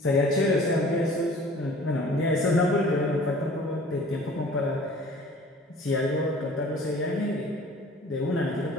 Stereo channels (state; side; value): normal; both; correlation 0.48